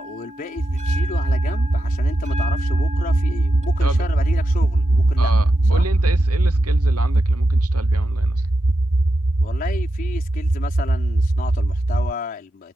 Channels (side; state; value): both; normal; correlation 0.89